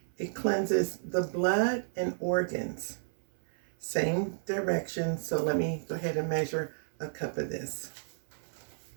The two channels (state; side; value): silent; left; 56 dB below the other